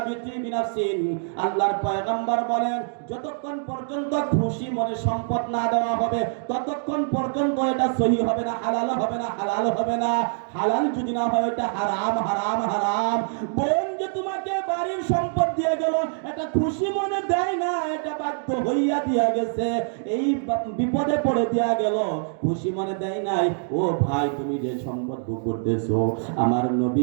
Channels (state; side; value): silent; left; digital silence